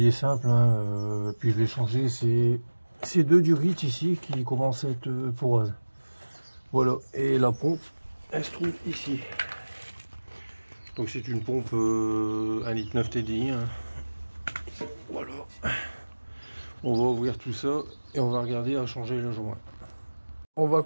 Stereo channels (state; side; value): inverted; both; correlation -1.00